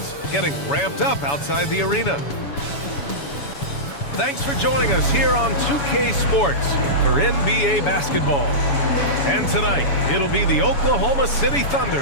getting ramped up outside the arena. Thanks for joining us here on 2K Sports for NBA basketball. And tonight, it'll be the Oklahoma City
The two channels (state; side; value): late; right; 7.1 ms